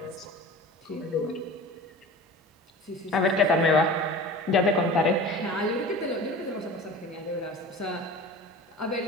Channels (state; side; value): normal; both; correlation 0.37